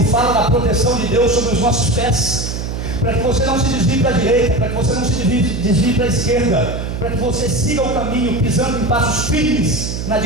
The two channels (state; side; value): noise; right; hum, 5 dB below the sound